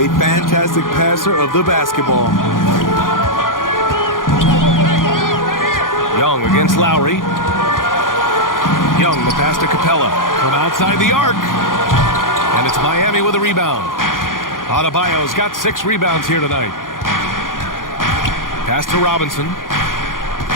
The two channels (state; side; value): late; right; 0.90 ms